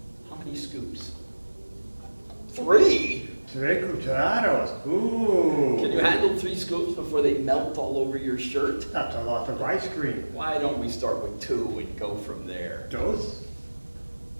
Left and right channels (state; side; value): inverted; both; correlation -1.00